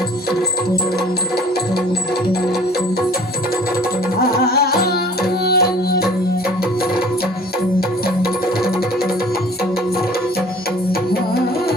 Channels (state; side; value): normal; both; correlation 0.50